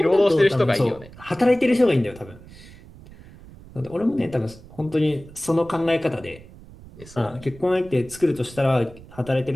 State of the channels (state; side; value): noise; right; rumble, 20 dB below the sound